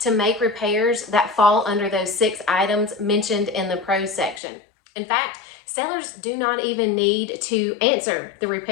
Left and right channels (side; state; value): right; drops out; at 4.4 s